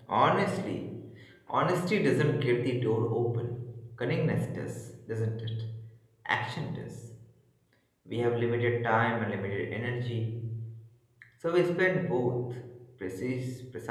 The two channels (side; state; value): both; identical; correlation 1.00